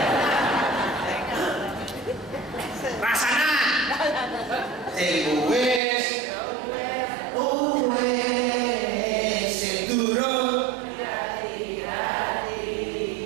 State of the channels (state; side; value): drops out; left; at 5.8 s